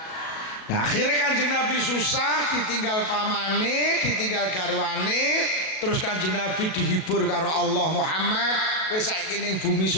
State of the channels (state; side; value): late; right; 37 ms